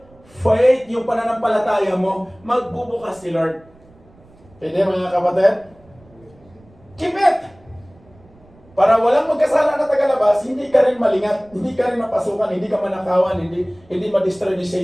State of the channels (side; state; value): right; noise; rumble, 28 dB below the sound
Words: faith, yung pananampalataya mo, magbubukas si Lord. Pwede mga kapatid? Keep it! Para walang magkasala na tagalabas, hindi ka rin malingat, hindi ka rin mapasukan, hindi ka manakawan, hindi ma-destroy ni